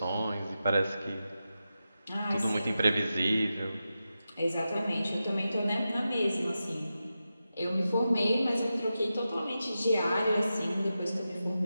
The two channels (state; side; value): inverted; both; correlation -0.91